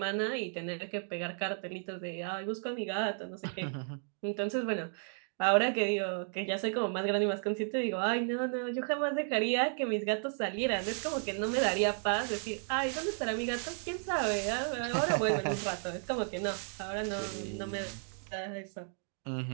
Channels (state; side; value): silent; left; 55 dB below the other